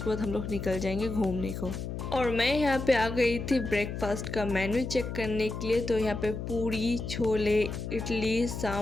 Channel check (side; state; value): left; noise; hum, 6 dB below the sound